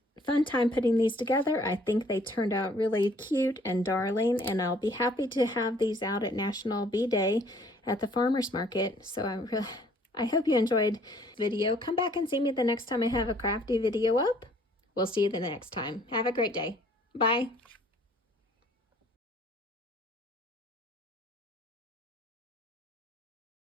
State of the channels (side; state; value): both; normal; correlation 0.59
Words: time putting these together. I think they turned out really cute and darling, and I'll be happy to have these out at National Bee Day at the farmer's market. So I hope you enjoyed the video. Come back and see me the next time I have a crafty video up. We'll see you the next time. Have a great day. Bye.